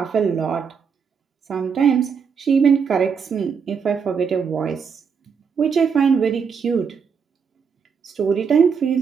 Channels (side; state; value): left; quieter; 6.3 dB